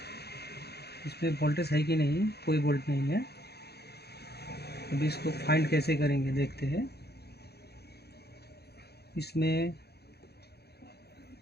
इसमें वोल्टेज है कि नहीं, कोई वोल्ट नहीं है। अभी इसको फाइंड कैसे करेंगे देखते हैं। इसमें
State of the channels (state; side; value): late; right; 0.47 ms